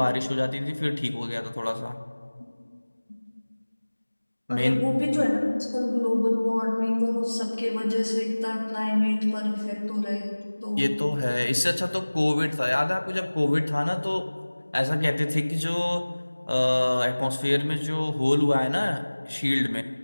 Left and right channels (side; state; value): both; inverted; correlation -1.00